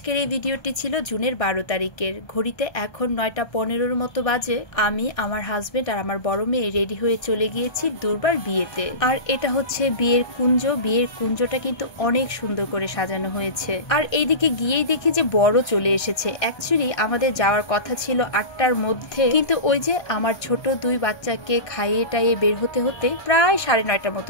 এই ভিডিওটি ছিল জুনের 12 তারিখের। ঘড়িতে এখন 9টা 15-র মতো বাজে। আমি, আমার হাজবেন্ড আর আমার বড় মেয়ে রেডি হয়ে চলে গিয়েছি দুর্বার বিয়েতে। আর এটা হচ্ছে বিয়ের কুঞ্জ। বিয়ের কুঞ্জটা কিন্তু অনেক সুন্দর করে সাজানো হয়েছে। আর এইদিকে গিয়েই দেখি যে বড় চলে এসেছে। অ্যাকচুয়ালি আমাদের যাওয়ার কথা ছিল 8টার মধ্যে, কিন্তু ওই যে আমার ছোট 2 বাচ্চাকে খাইয়ে টাইয়ে বের হতে হতে প্রায় 9:30টার মতো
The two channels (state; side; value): late; right; 1.3 ms